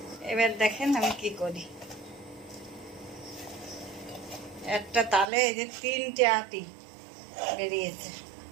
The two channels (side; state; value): left; drops out; at 5.2 s